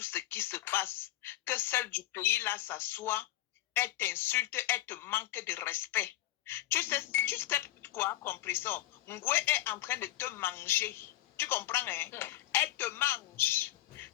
ce qui se passe. Que celle du pays là s'assoit, elle t'insulte, elle te manque de respect. Tu sais quoi, compressor? Ngwe est en train de te manger. Tu comprends, hein? Elle te mange.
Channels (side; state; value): right; quieter; 14.8 dB